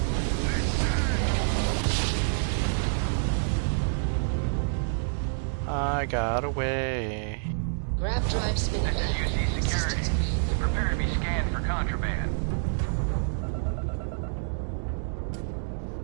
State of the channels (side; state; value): left; silent; digital silence